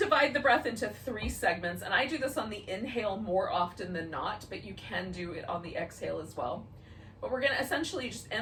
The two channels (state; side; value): identical; both; correlation 1.00